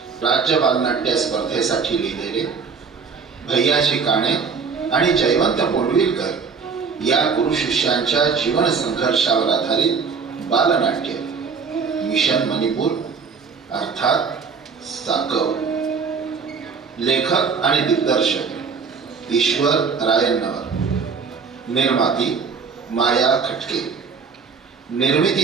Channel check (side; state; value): left; quieter; 5.6 dB